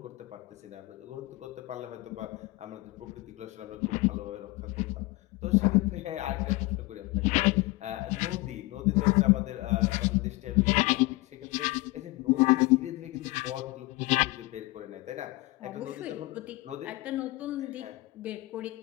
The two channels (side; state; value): right; quieter; 21.1 dB